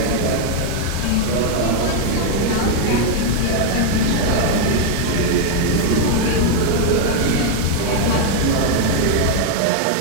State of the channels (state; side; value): different; both; correlation 0.00